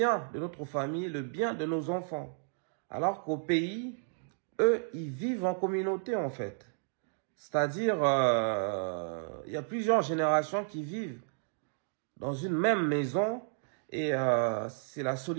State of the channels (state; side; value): silent; left; digital silence